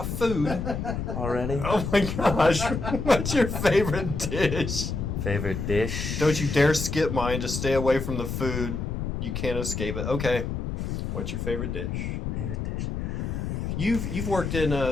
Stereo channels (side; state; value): left; noise; rumble, 3 dB below the sound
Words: food? Already? Oh my gosh. What's your favorite dish? Favorite dish? Don't you dare skip mine. Just stay away from the food. You can't escape it. Okay. What's your favorite dish? Favorite dish. You've worked in